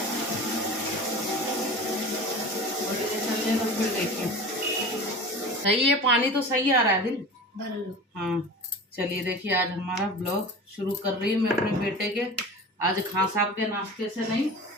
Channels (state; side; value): normal; both; correlation 0.35